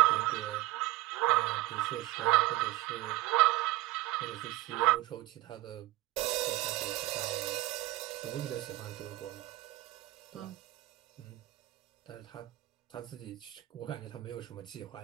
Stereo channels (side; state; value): left; quieter; 18.0 dB